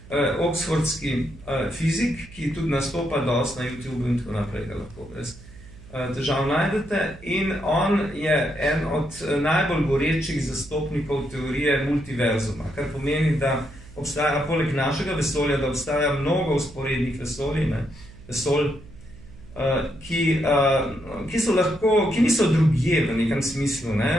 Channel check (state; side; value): noise; right; hum, 19 dB below the sound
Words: oxfordski fizik, ki tudi nastopa dosti na YouTube in tako naprej, ga lahko brez težav najdete. In on je en od najbolj gorečih zastopnikov teorije multiverzuma, kar pomeni, da obstaja poleg našega vesolja, da obstaja mnogo vzporednih vesolj, ki niso drugje v nekem smislu.